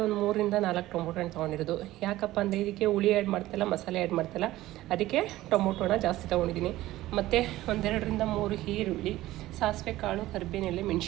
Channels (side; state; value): left; quieter; 16.1 dB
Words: ಒಂದು 3-4 ಟೊಮೊಟೊ ಹಣ್ಣು ತೊಗೊಂಡಿರೋದು. ಯಾಕಪ್ಪ ಅಂದರೆ ಇದಕ್ಕೆ ಹುಳಿ ಆ್ಯಡ್ ಮಾಡ್ತಾಯಿಲ್ಲ, ಮಸಾಲೆ ಆ್ಯಡ್ ಮಾಡ್ತಾಯಿಲ್ಲ, ಅದಕ್ಕೆ ಟೊಮೊಟೊನ ಜಾಸ್ತಿ ತೊಗೊಂಡಿದ್ದೀನಿ. ಮತ್ತು 1-2-3 ಈರುಳ್ಳಿ, ಸಾಸಿವೆ ಕಾಳು, ಕರಿಬೇವಿನೆಲೆ,